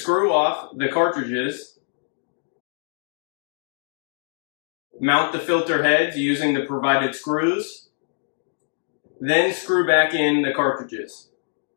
off the cartridges. Mount the filter heads using the provided screws. Then screw back in the cartridges.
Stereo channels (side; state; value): right; silent; digital silence